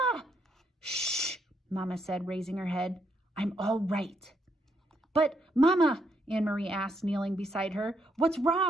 "Shh!" Mama said, raising her head. "I'm all right." "But, Mama," Anne-Marie asked, kneeling beside her, "what's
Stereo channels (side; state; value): both; normal; correlation 0.76